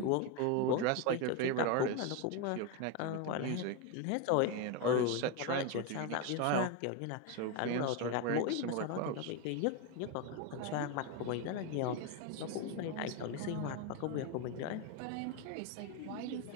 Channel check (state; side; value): different; both; correlation 0.02